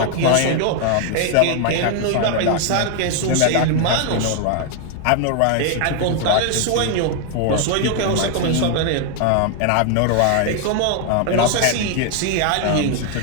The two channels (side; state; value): both; different; correlation 0.00